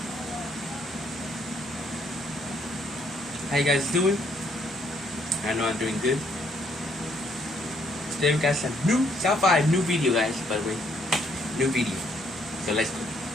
How you guys doing? I know I'm doing good. Today we got some new South 5 new video, guys, by the way. New video. So let's go.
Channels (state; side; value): normal; both; correlation 0.68